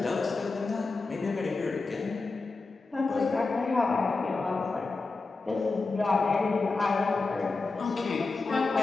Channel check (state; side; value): quieter; right; 3.8 dB